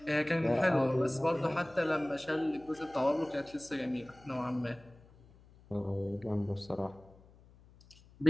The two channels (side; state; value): left; noise; hum, 25 dB below the sound